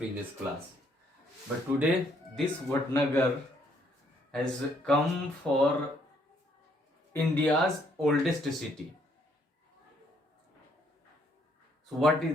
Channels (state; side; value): normal; both; correlation 0.68